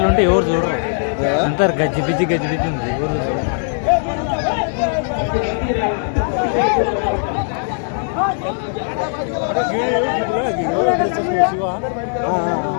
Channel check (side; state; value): right; silent; digital silence